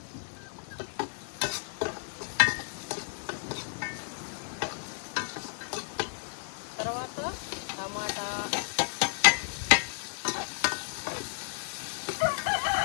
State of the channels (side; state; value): right; silent; 56 dB below the other